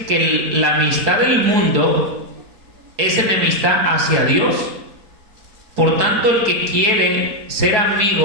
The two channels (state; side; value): late; left; 4.6 ms